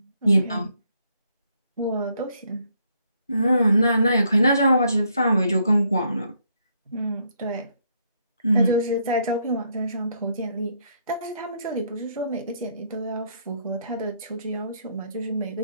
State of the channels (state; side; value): inverted; both; correlation -0.72